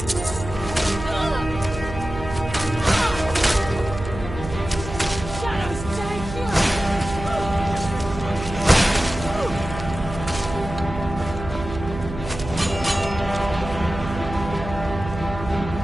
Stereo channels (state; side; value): noise; right; hum, 9 dB below the sound